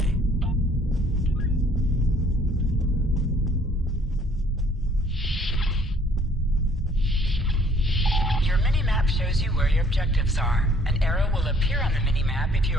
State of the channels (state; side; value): normal; both; correlation 0.60